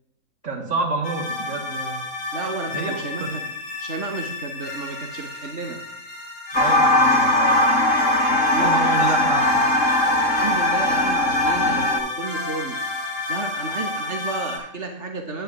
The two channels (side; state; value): right; late; 3.7 ms